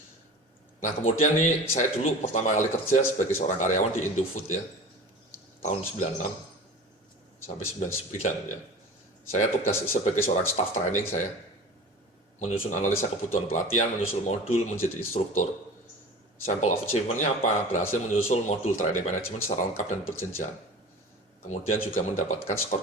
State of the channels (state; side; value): normal; both; correlation 0.37